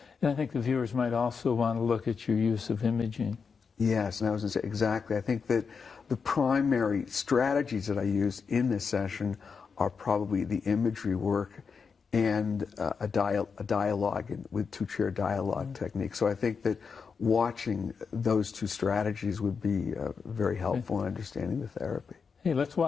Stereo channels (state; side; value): quieter; right; 5.6 dB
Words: And I think the viewers might also want to look at your use of imaging. Yes, and I was going to say exactly. I think that the primary strategies that I use in this session are probably the imagery work and a dialogue with two-chair dialogue technique. So I think that watching those two strategies would be very helpful in understanding the therapy. Hey, let's